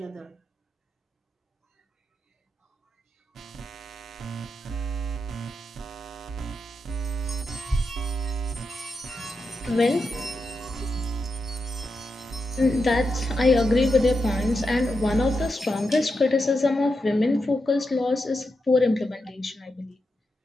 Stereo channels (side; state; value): both; normal; correlation 0.86